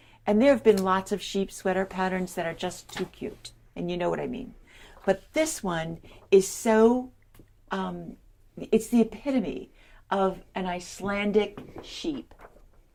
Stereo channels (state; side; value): identical; both; correlation 1.00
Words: And there have been lots of sheep sweater patterns that are just too cute. And you know what I mean. But this one is so, it's the epitome of an Icelandic sheep.